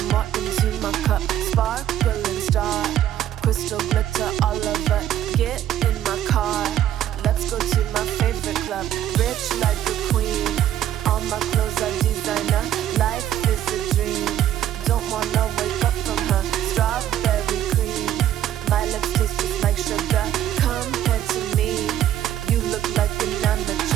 more into my cup. Sparkling star. Crystal glitter all over. Get in my car. Let's go to my favorite club. Rich like a queen. All my clothes are designer. Life is a dream. Don't wanna wake up from her strawberry cream. My lips taste just like sugar. Compared to me, you look like an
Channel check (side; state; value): left; quieter; 11.5 dB